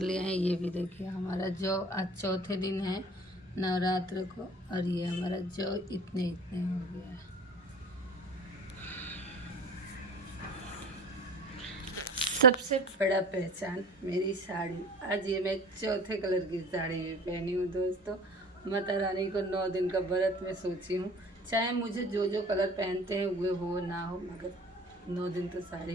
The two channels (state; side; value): normal; both; correlation 0.42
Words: हैं। ये भी देखिए हमारा जौ आज चौथे दिन है नवरात्र को, और ये हमारा जौ इतने इतने हो गया है। सबसे बड़ा पहचान मेरी साड़ी। आज ये मैं चौथे कलर की साड़ी भी पहनी हूँ दोस्तों। माता रानी को 9 दिन का व्रत में सोची हूँ, चाहे मुझे जो जो कलर पहनते हैं वे हो ना हो, मगर 9 दिन तो